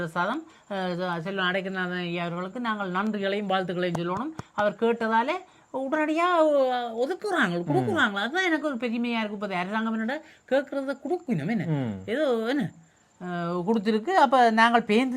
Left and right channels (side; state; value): both; identical; correlation 1.00